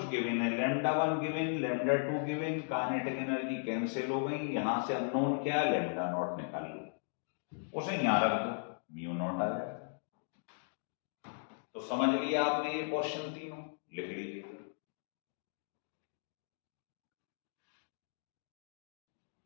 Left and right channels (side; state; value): right; silent; digital silence